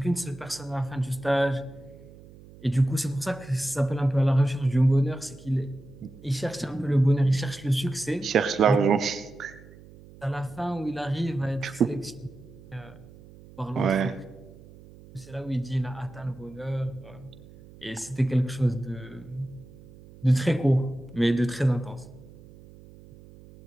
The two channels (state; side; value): noise; right; hum, 21 dB below the sound